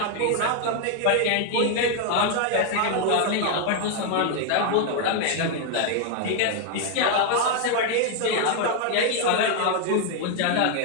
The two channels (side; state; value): both; different; correlation 0.00